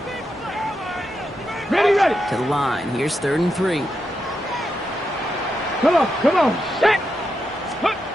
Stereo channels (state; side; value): normal; both; correlation 0.85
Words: Ready, ready. To the line. Here's 3rd and 3. Come on, come on. Set.